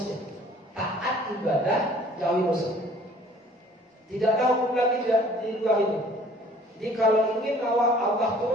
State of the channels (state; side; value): normal; both; correlation 0.53